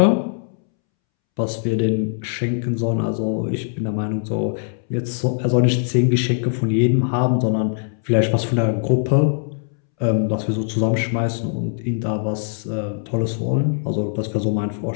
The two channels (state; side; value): silent; right; 65 dB below the other